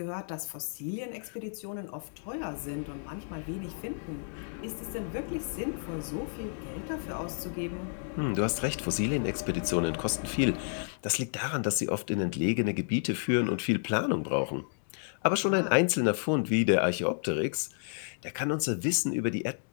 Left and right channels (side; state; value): right; silent; digital silence